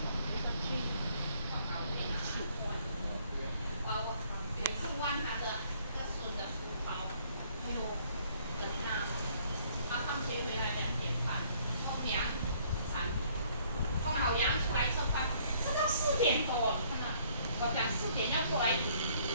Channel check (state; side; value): inverted; both; correlation -0.62